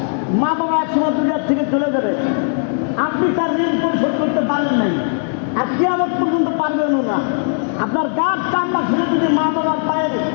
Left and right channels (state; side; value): silent; right; digital silence